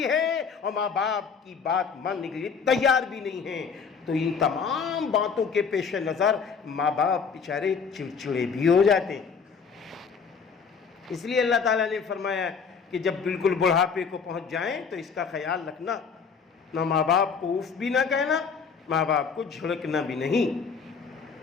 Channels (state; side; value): quieter; right; 5.9 dB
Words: ہے اور ماں باپ کی بات ماننے کے لیے تیار بھی نہیں ہیں. تو ان تمام باتوں کے پیش نظر ماں باپ بیچارے چڑچڑے بھی ہو جاتے ہیں. اس لیے اللہ تعالیٰ نے فرمایا کہ جب بالکل بڑھاپے کو پہنچ جائیں تو اس کا خیال رکھنا، نہ ماں باپ کو اف بھی نہ کہنا، ماں باپ کو جھڑکنا بھی نہیں.